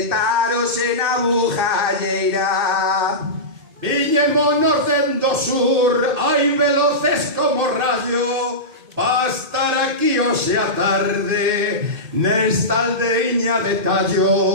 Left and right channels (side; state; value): left; late; 2.6 ms